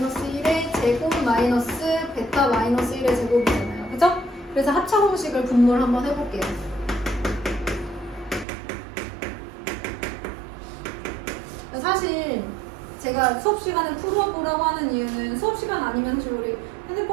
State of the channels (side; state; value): left; drops out; at 8.5 s